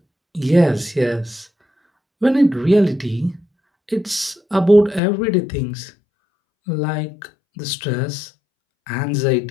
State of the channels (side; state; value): right; drops out; at 5.0 s